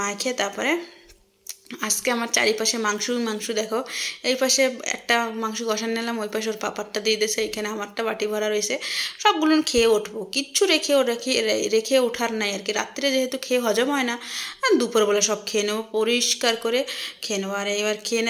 তারপরে আজকে আমার চারিপাশে মাংস দেখো। এই পাশে একটা মাংস কষান নিলাম, ওই পাশে ওর পাপারটা দিয়ে দিয়েছে, এখানে আমারটা বাটি ভরা রয়েছে। সবগুলো খেয়ে উঠবো, কিচ্ছু রেখে ওঠার নাই আর কি। রাত্রে যেহেতু খেয়ে হজম হয় না, দুপুরবেলা সব খেয়ে নেবো, পরিষ্কার করে খেয়ে নেবো। আর এবার খেয়ে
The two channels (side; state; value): both; identical; correlation 1.00